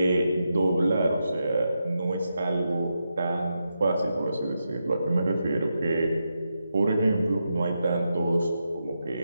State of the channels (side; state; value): both; inverted; correlation -0.86